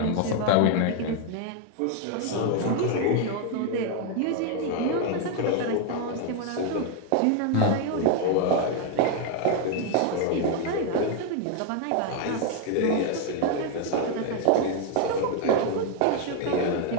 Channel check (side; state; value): both; different; correlation 0.00